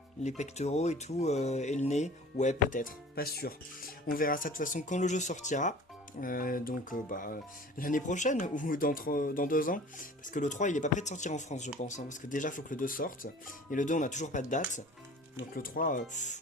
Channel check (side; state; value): both; normal; correlation 0.44